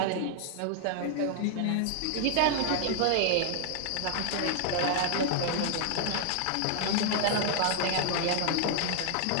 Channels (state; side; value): different; both; correlation 0.00